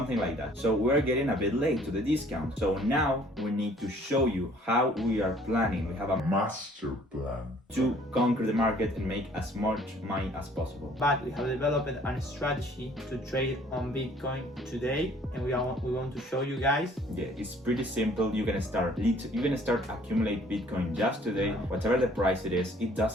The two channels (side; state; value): both; normal; correlation 0.57